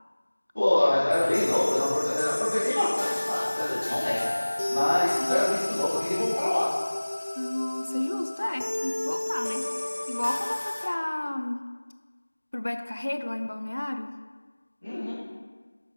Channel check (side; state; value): both; inverted; correlation -1.00